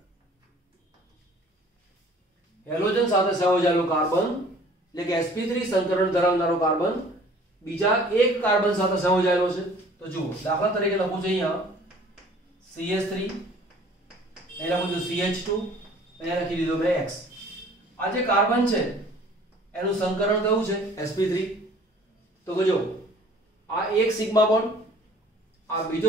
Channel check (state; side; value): normal; both; correlation 0.52